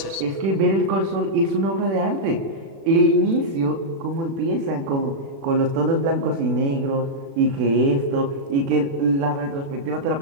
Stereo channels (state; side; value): late; left; 36 ms